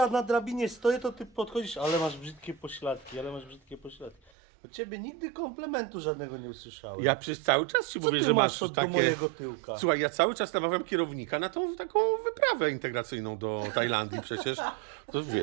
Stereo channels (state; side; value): drops out; left; at 4.3 s